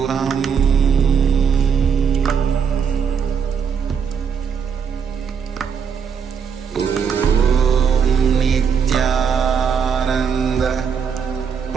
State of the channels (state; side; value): quieter; left; 6.7 dB